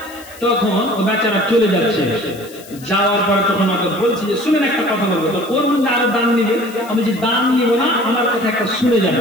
তখন ও বেচারা চলে যাচ্ছে, যাওয়ার পরে তখন আমাকে বলছি যে শুনেন একটা কথা বলবো, তো ওর মধ্যে আরো দান নিবে। আমি যে দান নিব না, আমার কথা একটা শুনে যাবে।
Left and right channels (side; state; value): left; noise; hiss, 20 dB below the sound